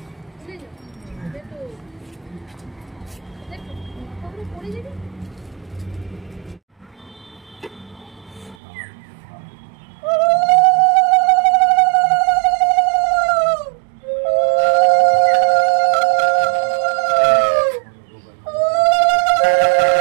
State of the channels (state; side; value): drops out; left; at 8.6 s